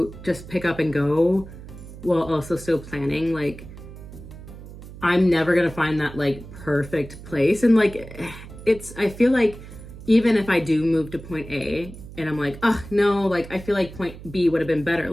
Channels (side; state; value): right; noise; hum, 15 dB below the sound